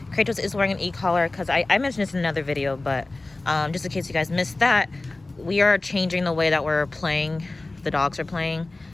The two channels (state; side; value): quieter; right; 3.1 dB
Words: Kratos is wearing an e-collar because I mentioned this in another video, but just in case you guys missed that, we are changing the way that we're playing. The dogs are playing.